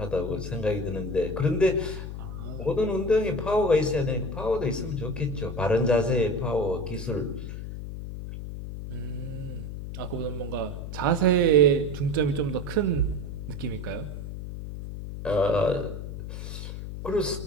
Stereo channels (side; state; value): left; noise; hum, 8 dB below the sound